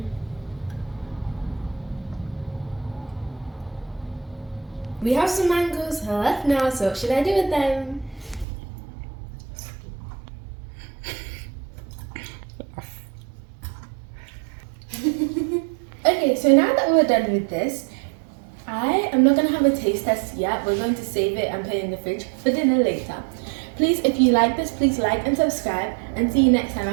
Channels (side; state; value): left; drops out; at 8.5 s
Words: We have some mangoes left now, so what should I do with them? Okay, so now that we're done with this, I am not going to have a taste test yet. We're going to save it and put it in the fridge for dinner later. Please, if you like this, please like and subscribe, and see you next time